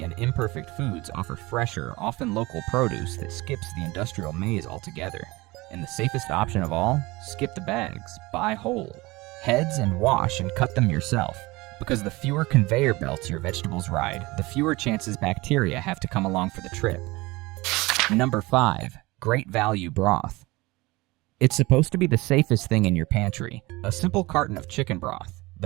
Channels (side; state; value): left; quieter; 22.0 dB